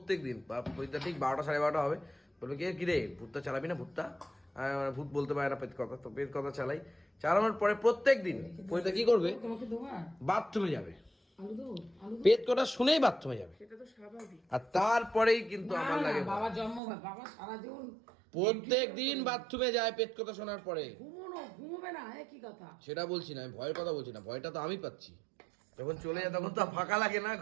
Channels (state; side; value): drops out; left; at 16.8 s